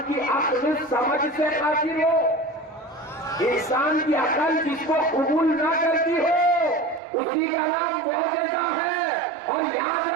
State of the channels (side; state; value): left; drops out; at 7.0 s